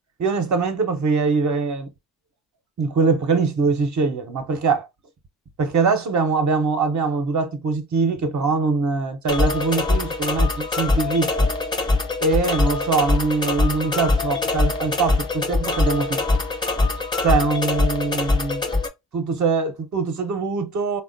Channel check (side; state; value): both; normal; correlation 0.44